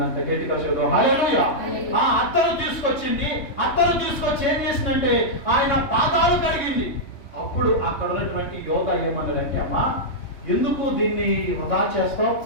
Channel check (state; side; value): late; right; 3.2 ms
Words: గట్టిగా చదువు హల్లెలూయా. ఆ అత్తరు తీసుకొచ్చి ఏం చేసిందంటే ఆయన పాదాలు కడిగింది. అప్పుడు అక్కడ ఉన్నటువంటి యోధ ఏమన్నాడంటే, అమ్మా ఎందుకు దీన్ని వృధా చేస్తావు?